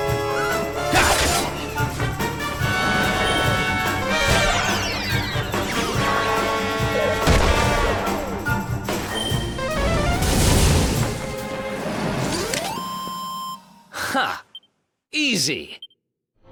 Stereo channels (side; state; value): both; identical; correlation 1.00